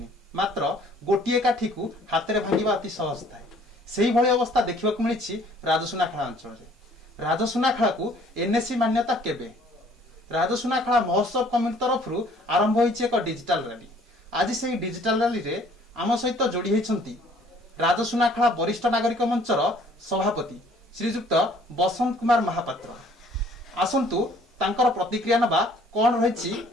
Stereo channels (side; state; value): both; normal; correlation 0.57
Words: मात्र गोटे काठी को हाथ में भांगा अति सहज थाए से भली अवस्था देखा मिली राजसुनाखेला अंचल राजसुनाखेला को एनएससी मान्यता केबे राजसुनाखेला महोत्सव कमिटी तरफ आरंभ होइछि एक डिजिटल रैली आज से डिजिटल रैली रे आम सहित जोड़ी होइछंती राजसुनाखेला वरिष्ठ नागरिक मंचर सभापति श्रीजुक्त बसंत कुमार महापात्र आसंतु तांकर प्रतिक्रिया नबा कौन रही